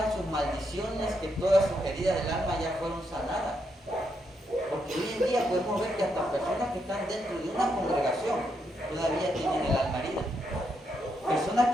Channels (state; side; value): normal; both; correlation 0.79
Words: sus maldiciones, que todas sus heridas del alma ya fueron sanadas. Porque hoy en día podemos ver que hasta personas que están dentro de una congregación todavía tienen el alma herida. Personas